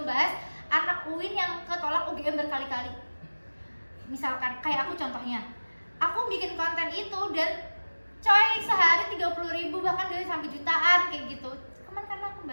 bahas anak UIN yang ketolak UGM berkali-kali. Misalkan kayak aku contohnya, aku bikin konten itu dan coy sehari 30.000 bahkan dari sampai jutaan kayak gitu. Karena aku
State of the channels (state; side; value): inverted; both; correlation -1.00